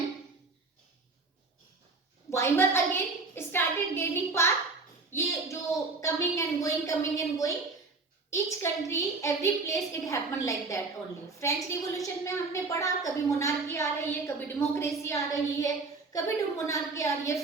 Weimar again started gaining power. ये जो coming and going, each country, every place it happened like that only. French Revolution में हमने पढ़ा, कभी monarchy आ रही है, कभी democracy आ रही है, कभी मोनार्की आ रही है,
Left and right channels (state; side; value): quieter; left; 3.8 dB